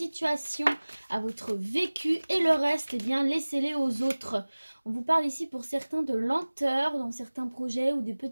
à votre vécu et le reste, eh bien, laissez-les aux autres. On vous parle ici pour certains de lenteur dans certains projets ou de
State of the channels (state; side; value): inverted; both; correlation -1.00